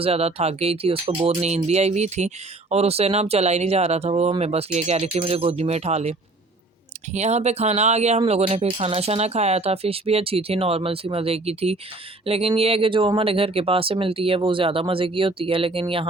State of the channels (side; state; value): left; quieter; 3.0 dB